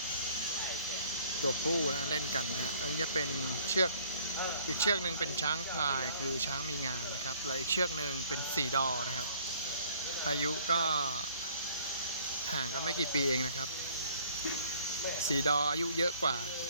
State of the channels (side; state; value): both; inverted; correlation -0.57